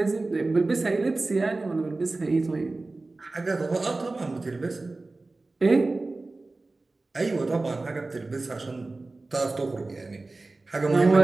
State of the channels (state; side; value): quieter; left; 3.3 dB